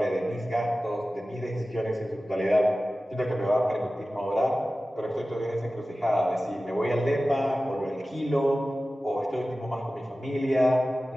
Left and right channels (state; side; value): normal; both; correlation 0.95